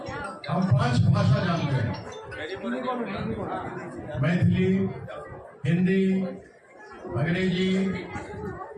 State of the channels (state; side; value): identical; both; correlation 1.00